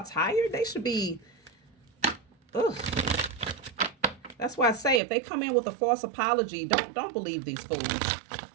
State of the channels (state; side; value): drops out; left; at 5.0 s